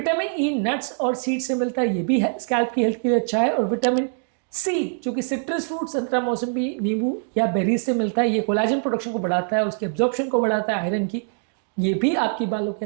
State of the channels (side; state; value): left; silent; digital silence